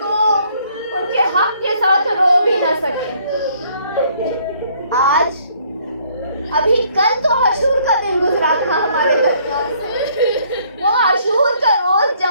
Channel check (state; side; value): inverted; both; correlation -0.64